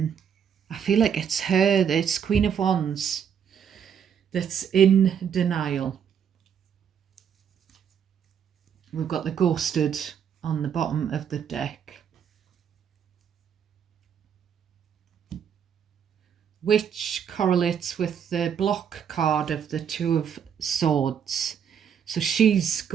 feel like it's her, it's Queen of Wands, that's in denial. We've got the ghosted on the bottom of the deck, which correlates with the block card of the Two of Swords. So she's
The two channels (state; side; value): quieter; left; 8.0 dB